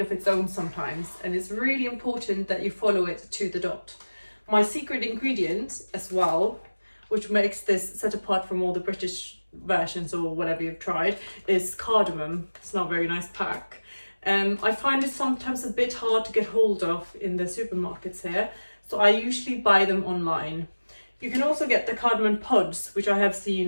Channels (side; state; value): both; inverted; correlation -1.00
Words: of its own sometimes, and it's really important that you follow it to the dot. My secret ingredient as well, which makes this set apart from all the British versions or whatever you've tried, is cardamom. It's not a very nice pack. I find it sometimes a bit hard to get hold of in the supermarkets here, so I usually buy them online. You can also get the cardamom pods, which I have